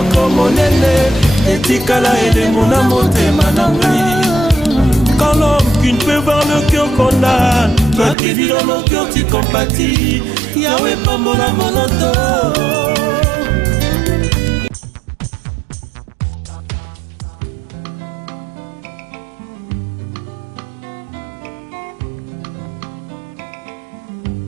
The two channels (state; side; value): drops out; left; at 8.2 s